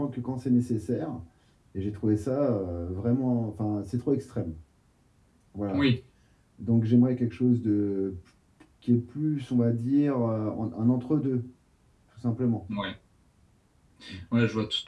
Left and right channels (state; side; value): identical; both; correlation 1.00